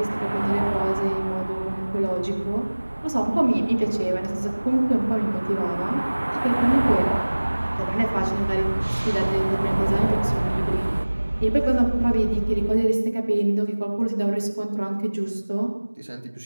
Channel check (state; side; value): inverted; both; correlation -1.00